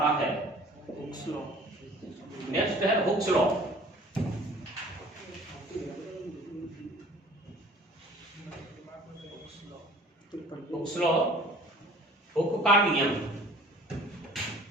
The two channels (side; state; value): both; normal; correlation 0.49